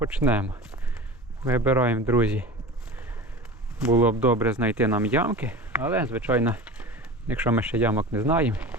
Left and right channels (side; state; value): both; normal; correlation 0.34